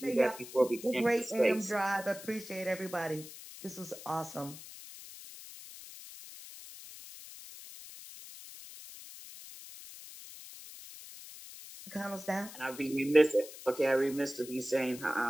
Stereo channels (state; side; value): noise; left; hiss, 14 dB below the sound